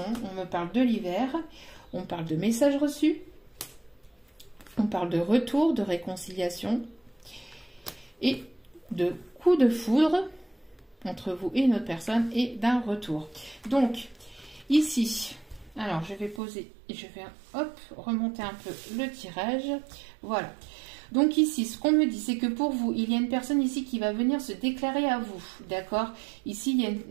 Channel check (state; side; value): drops out; left; at 16.4 s